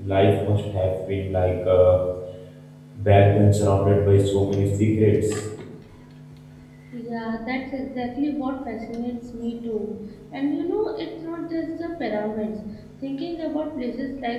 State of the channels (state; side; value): identical; both; correlation 1.00